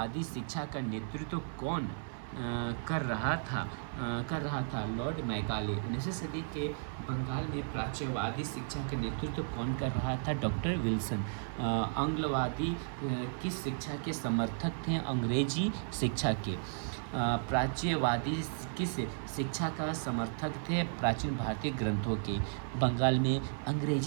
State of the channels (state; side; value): silent; left; 55 dB below the other